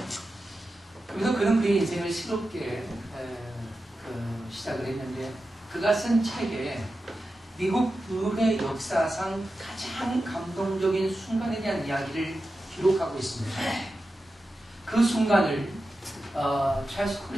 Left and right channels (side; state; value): both; normal; correlation 0.92